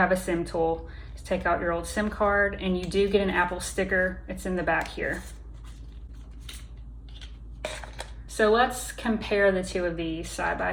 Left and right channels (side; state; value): both; identical; correlation 1.00